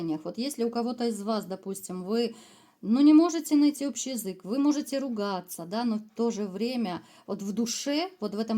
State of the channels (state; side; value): identical; both; correlation 1.00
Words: Вот если у кого-то из вас, допустим, вы ну, не можете найти общий язык, вы можете ругаться, да, но в то же время вот в душе, вот в